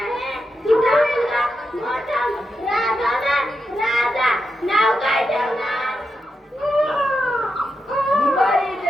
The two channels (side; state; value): both; normal; correlation 0.86